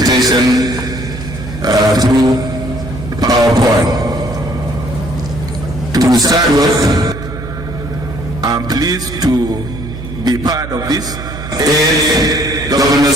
through PowerPoint. To start with, I'm pleased to be part of this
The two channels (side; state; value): right; noise; hum, 10 dB below the sound